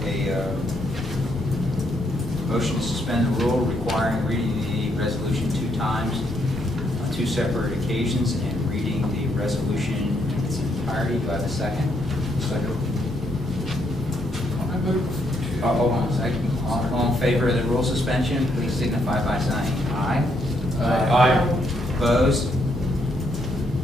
a motion to suspend the rule requiring reading the resolution 2 times on 2 separate occasions and reading the resolution in its entirety. Do I have a second? Second. I move to. Hold on a second. All in favor of the rule suspension, please signify by saying aye. Aye. Opposed?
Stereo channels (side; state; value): both; normal; correlation 0.75